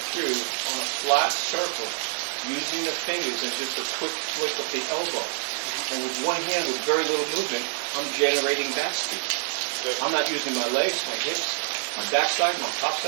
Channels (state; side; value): silent; left; 61 dB below the other